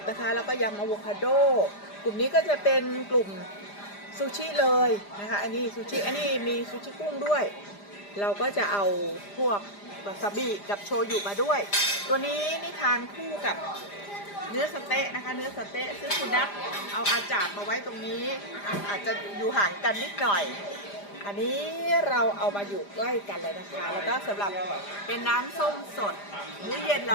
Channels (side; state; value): right; late; 5.0 ms